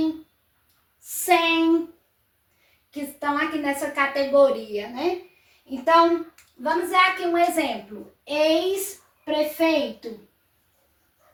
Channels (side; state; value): both; identical; correlation 1.00